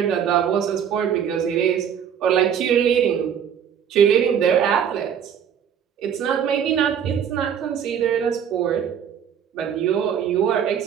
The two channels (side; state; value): left; quieter; 8.4 dB